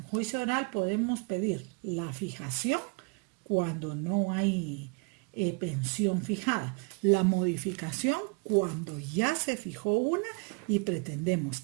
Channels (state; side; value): quieter; left; 32.7 dB